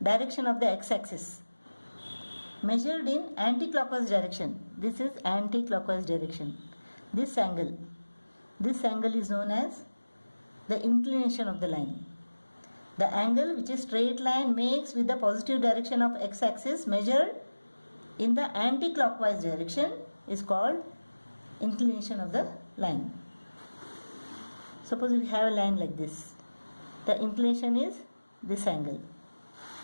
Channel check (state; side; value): inverted; both; correlation -1.00